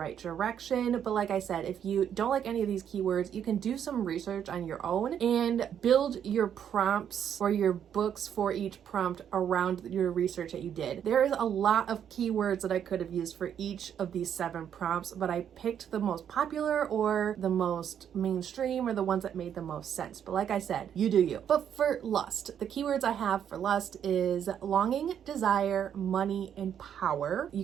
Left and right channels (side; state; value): left; quieter; 9.0 dB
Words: direction. But like I said, if you don't like any of these keywords, you can do some research on your own and build your prompts or your books for each prompt around your research that you did. There is a lot of keywords that I could have used for each of these 7 prompts, but I picked the most popular or the most mainstream or the ones that made the most sense. But like I said, you do you. But for lust, the keywords I have for lust is longing, desire, money, and power.